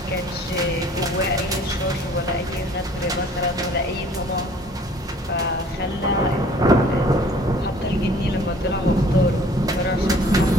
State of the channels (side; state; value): both; normal; correlation 0.53